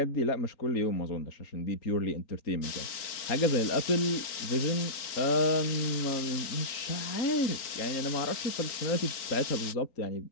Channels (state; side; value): late; right; 3.9 ms